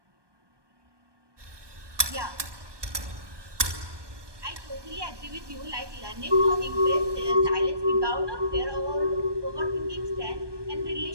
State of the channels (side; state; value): left; late; 1.2 ms